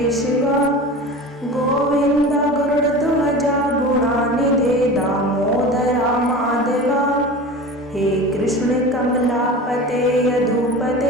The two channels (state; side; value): normal; both; correlation 0.33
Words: गोविंद गरुड़ध्वजा गुणानिधे दामोदरा माधवा हे कृष्ण कमलापते